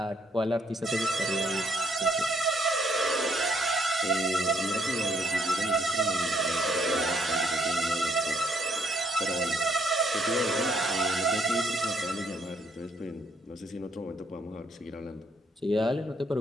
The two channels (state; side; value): normal; both; correlation 0.69